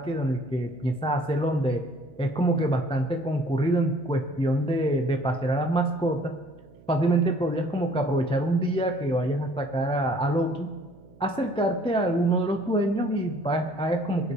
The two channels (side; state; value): right; noise; hum, 25 dB below the sound